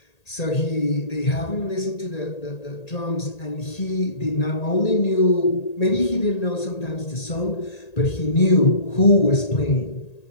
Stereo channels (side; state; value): right; late; 1.8 ms